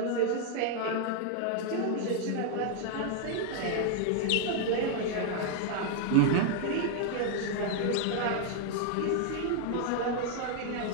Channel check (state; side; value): different; both; correlation 0.00